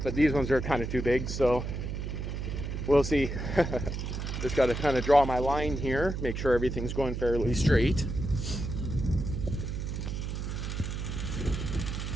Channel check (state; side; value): noise; right; hum, 4 dB below the sound